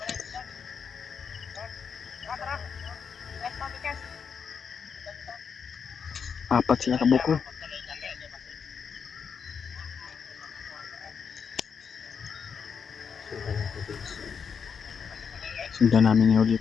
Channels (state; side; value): quieter; right; 6.4 dB